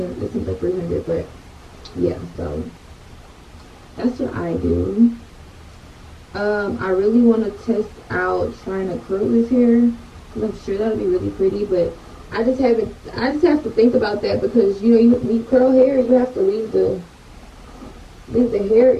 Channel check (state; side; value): identical; both; correlation 1.00